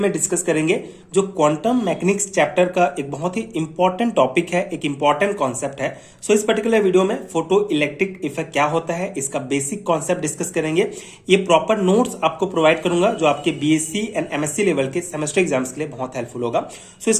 डिस्कस करेंगे, जो क्वांटम मैकेनिक्स चैप्टर का एक बहुत ही इंपॉर्टेंट टॉपिक है, एक इंपॉर्टेंट कॉन्सेप्ट है। सो इस पर्टिकुलर वीडियो में फोटो इलेक्ट्रिक इफेक्ट क्या होता है, इसका बेसिक कॉन्सेप्ट डिस्कस करेंगे। ये प्रॉपर नोट्स आपको प्रोवाइड करूंगा जो आपके बीएससी एंड एमएससी लेवल के सेमेस्टर एग्जाम्स के लिए बहुत हेल्पफुल होगा। सो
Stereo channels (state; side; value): identical; both; correlation 1.00